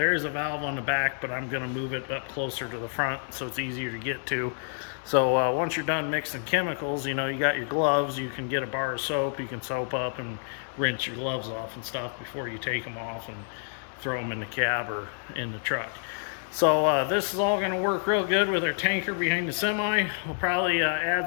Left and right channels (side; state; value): right; silent; 59 dB below the other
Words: is a valve on the back, but I'm going to move it up closer to the front so it's easier to get to. So once you're done mixing chemicals, you know, you got your gloves, you can get a bar of soap, you can soap up and rinse your gloves off and stuff before you take them off and throw them in the cab or in the truck. So this is all going to work real good with our tanker behind the semi. We'll probably